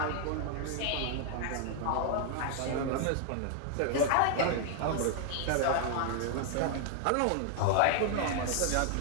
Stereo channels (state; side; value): different; both; correlation 0.00